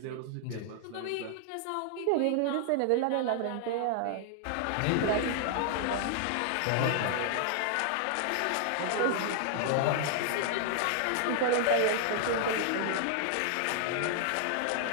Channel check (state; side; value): different; both; correlation 0.00